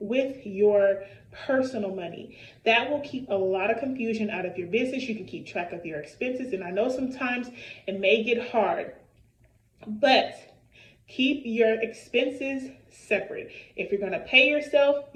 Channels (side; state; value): both; identical; correlation 1.00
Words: your personal money. That will keep a lot of confusion out of your business. You can keep track of your expenses. And I know sometimes it may get hard, but keep your expenses separate. If you're going to pay yourself,